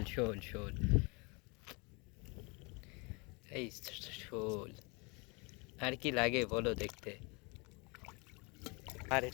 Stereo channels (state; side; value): quieter; right; 29.8 dB